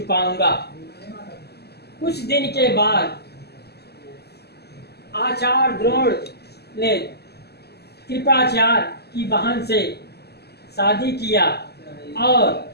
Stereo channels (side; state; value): right; late; 0.47 ms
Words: कुछ दिन के बाद आचार्य द्रोण ने कृपाचार्य की बहन से शादी किया और